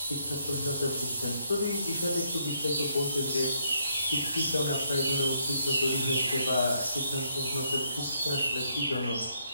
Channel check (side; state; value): both; inverted; correlation -0.73